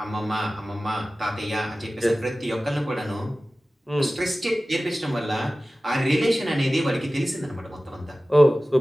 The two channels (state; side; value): normal; both; correlation 0.96